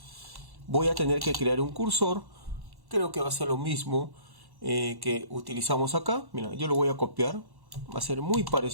Voy a tener que crear un cursor. Creo que va a ser lo mismo que utilizamos acá. Mira, yo lo voy a copiar. Va a ser muy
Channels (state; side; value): late; left; 1.1 ms